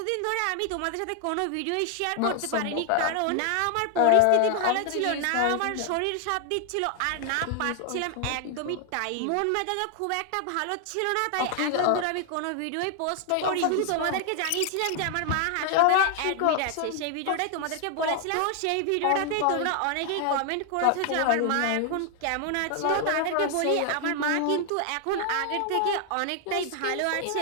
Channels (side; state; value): both; different; correlation 0.00